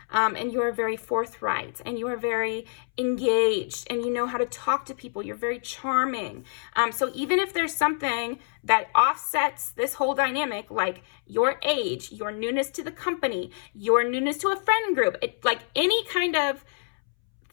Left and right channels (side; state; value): right; silent; 61 dB below the other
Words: And you are very forthright, and you are very engaged, and you know how to talk to people. You're very charming. So even if there's something that offsets this whole dynamic, like your age, your newness to the company, your newness to a friend group, like any kind of